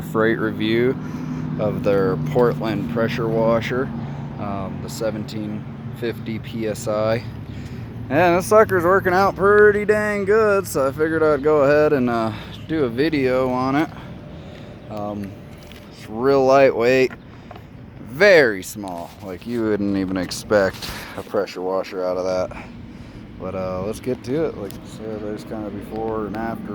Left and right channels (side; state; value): both; identical; correlation 1.00